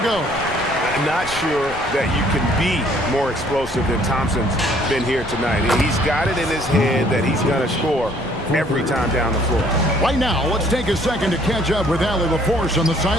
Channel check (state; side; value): noise; right; rumble, 15 dB below the sound